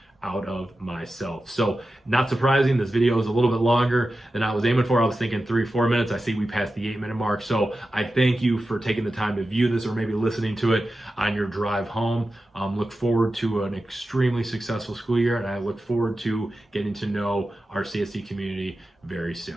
out of myself. So, not surprising, this video is a little bit longer than I was aiming for. I was thinking 3-4 minutes. I see we passed the 8-minute mark. So I thank you for taking the time to view this, or maybe listening to it on your drive home. Look forward to an extremely successful school year, and I look forward to getting to know our CSD community very soon.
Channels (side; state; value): both; normal; correlation 0.93